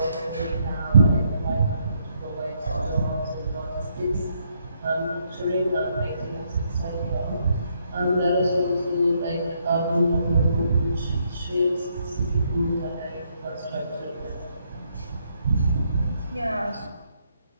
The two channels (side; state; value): both; inverted; correlation -0.74